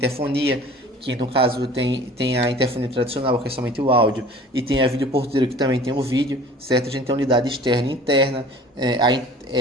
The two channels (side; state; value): both; normal; correlation 0.46